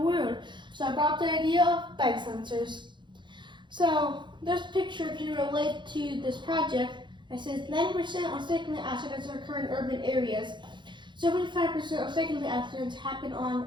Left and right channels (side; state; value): left; late; 0.23 ms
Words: world? So I brought up the idea of bike sensors. So this picture can relate to this project. It says 90% of cycling accidents occur in urban areas. 75% of cycling accidents happen on